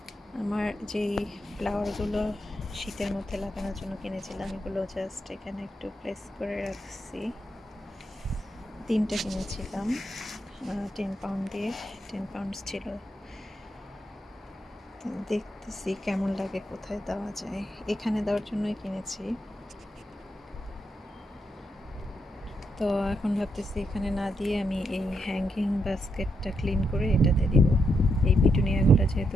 আমার যেই ফ্লাওয়ারগুলো শীতের মধ্যে লাগানোর জন্য কিনেছিলাম, এগুলো জাস্ট এখানে একটু প্লেস করে রাখছি। 3টে কিনেছিলাম 10 পাউন্ড দিয়ে, 10 পাউন্ডস ছিল। দেখতেছি কেমন লাগে, কোথায় দেওয়া যায়। এখানে দেওয়ার জন্যই কিনেছি। তো এখন ভাবতেছি এখানে না দিয়ে আমি এই হ্যাঙ্গিং বাস্কেটটা ক্লিন করে এটাতে দিব। এই পিটুনিয়াগুলো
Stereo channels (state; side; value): normal; both; correlation 0.81